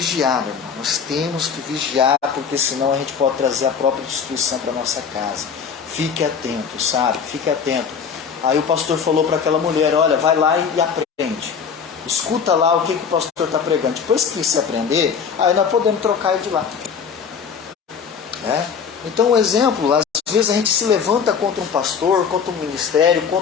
meu irmão. Nós temos que vigiar, porque senão a gente pode trazer a própria destruição para a nossa casa. Fique atento, sabe? Fique atento. Aí o pastor falou para aquela mulher, olha, vai lá e aprende. Escuta lá o que o pastor está pregando. Depois que você aprender, aí nós podemos trocar ele de lá. Então um exemplo, às vezes a gente se levanta contra um pastor, contra um ministério,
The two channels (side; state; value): right; quieter; 6.5 dB